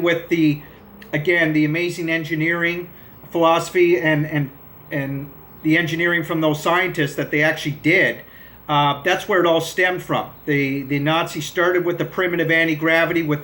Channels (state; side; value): identical; both; correlation 1.00